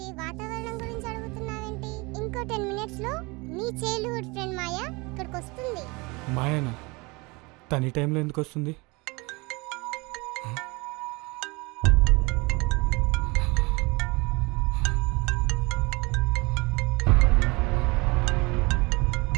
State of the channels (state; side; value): quieter; left; 26.0 dB